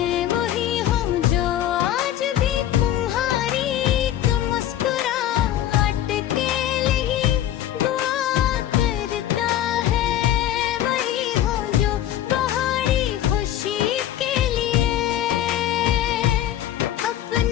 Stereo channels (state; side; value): quieter; right; 12.0 dB